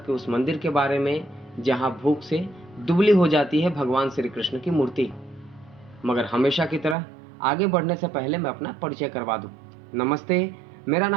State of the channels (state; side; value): drops out; left; at 7.0 s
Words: के उस मंदिर के बारे में जहाँ भूख से दुबली हो जाती है भगवान श्री कृष्ण की मूर्ति। मगर हमेशा की तरह आगे बढ़ने से पहले मैं अपना परिचय करवा दूं। नमस्ते, मेरा